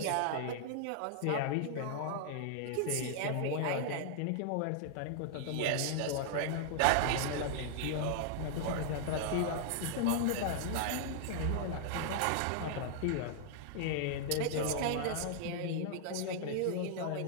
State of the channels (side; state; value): both; different; correlation -0.01